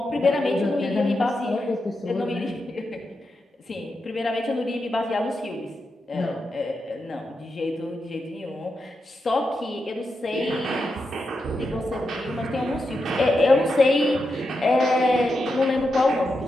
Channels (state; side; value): normal; both; correlation 0.87